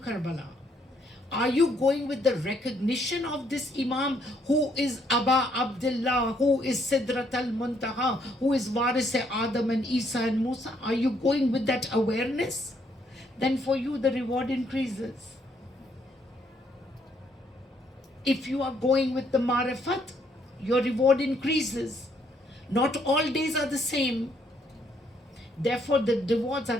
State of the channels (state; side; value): normal; both; correlation 0.70